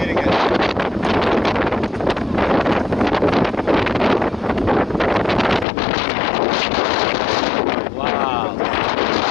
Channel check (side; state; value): right; drops out; at 5.7 s